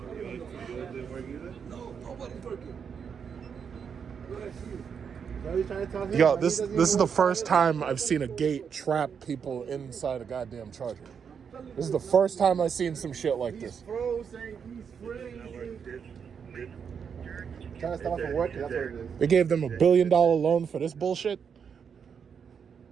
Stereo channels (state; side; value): quieter; left; 6.9 dB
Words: Yo, this is the first time I've seen a gate trap people inside a goddamn Charger. This is the first time I've seen some shit like this. Trying to stop from working, that's what it is. They gave them $1 billion loan for this bullshit.